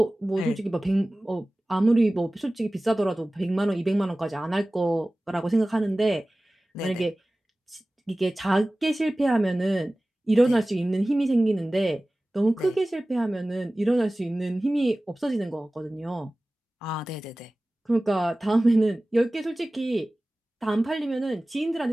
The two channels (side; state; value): both; normal; correlation 0.98